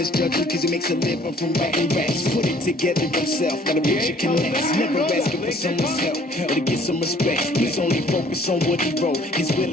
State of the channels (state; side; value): normal; both; correlation 0.57